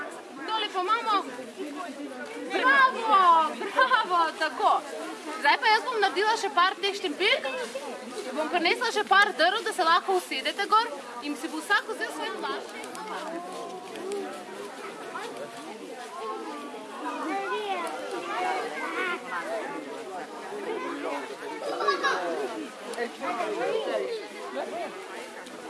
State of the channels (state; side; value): identical; both; correlation 1.00